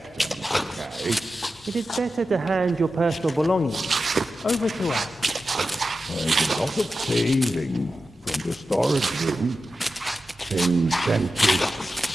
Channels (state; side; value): normal; both; correlation 0.92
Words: okay? It is better to hand your personal belongings over to us. There's a lot of thieving from the storage room. Things tend to